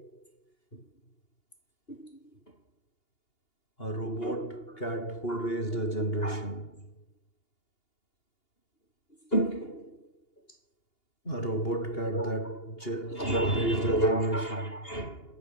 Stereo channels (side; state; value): right; late; 2.8 ms